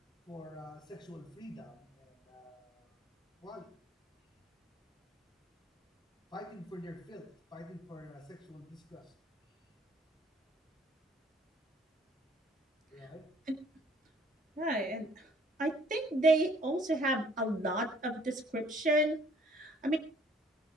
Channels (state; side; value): normal; both; correlation 0.59